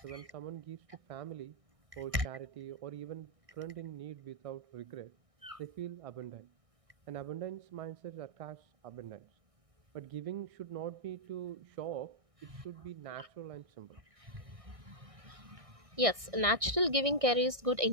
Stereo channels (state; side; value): late; left; 1.6 ms